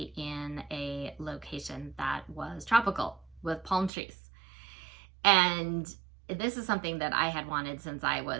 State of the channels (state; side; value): drops out; left; at 3.9 s